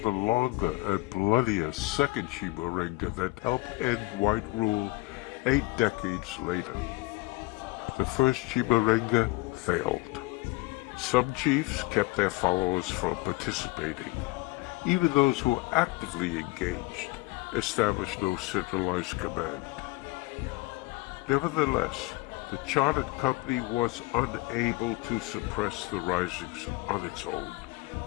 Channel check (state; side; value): quieter; right; 22.1 dB